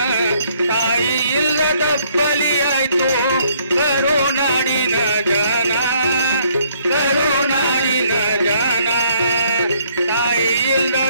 ತಾಯಿ ಇಲ್ಲದ ಬಲಿಯಾಯ್ತು ಕರುನಾಡಿನ ಜನ ಕರುನಾಡಿನ ಜನ ತಾಯಿ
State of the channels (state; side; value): inverted; both; correlation -0.65